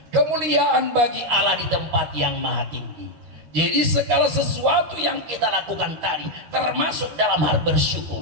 Kemuliaan bagi Allah di tempat yang maha tinggi. Jadi segala sesuatu yang kita lakukan tadi, termasuk dalam hal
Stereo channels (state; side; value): late; left; 13 ms